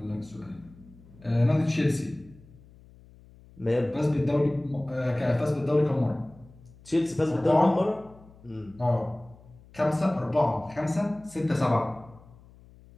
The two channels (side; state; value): left; noise; hum, 24 dB below the sound